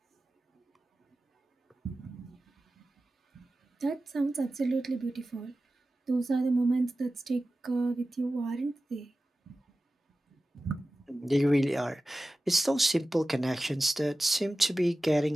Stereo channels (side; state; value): both; normal; correlation 0.95